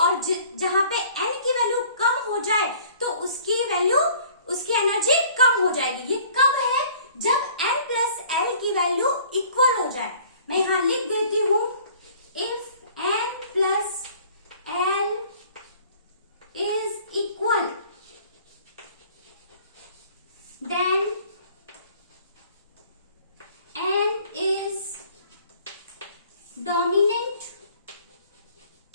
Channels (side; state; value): both; inverted; correlation -0.53